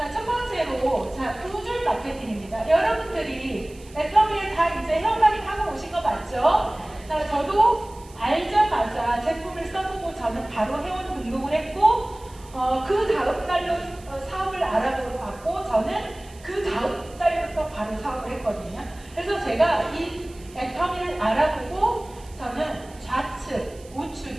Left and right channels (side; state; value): right; noise; hiss, 24 dB below the sound